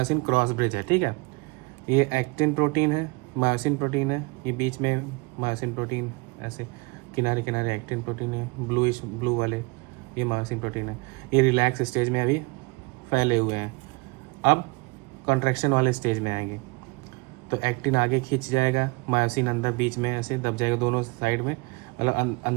क्रॉस ब्रिज है, ठीक है। ये एक्टिन प्रोटीन है, मायोसिन प्रोटीन है, ये बीच में मायोसिन प्रोटीन, ऐसे किनारे किनारे एक्टिन प्रोटीन है, ब्लू वाले ये मायोसिन प्रोटीन है। ये रिलैक्स स्टेज में अभी फैले हुए हैं, अब कॉन्ट्रैक्शन वाले स्टेज में आएंगे। तो एक्टिन आगे खींच जाएगा, मायोसिन अंदर बीच में ऐसे दब जाएगा, दोनों साइड में, मतलब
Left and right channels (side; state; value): left; quieter; 27.5 dB